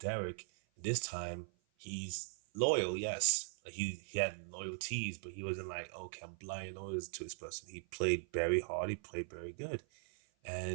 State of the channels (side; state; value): left; silent; 51 dB below the other